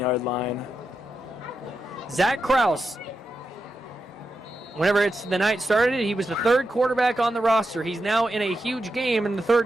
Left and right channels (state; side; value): normal; both; correlation 0.87